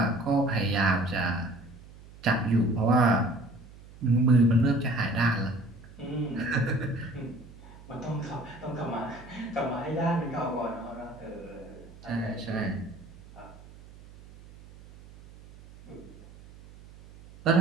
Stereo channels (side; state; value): right; noise; hum, 20 dB below the sound